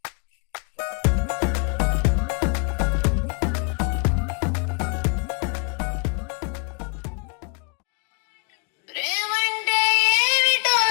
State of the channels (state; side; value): quieter; right; 37.1 dB